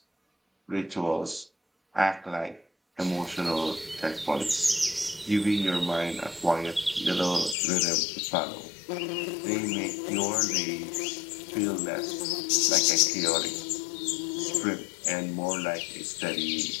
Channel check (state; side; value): drops out; right; at 7.6 s